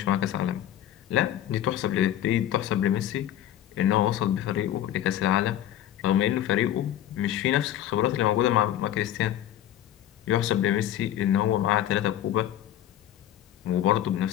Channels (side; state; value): right; quieter; 11.8 dB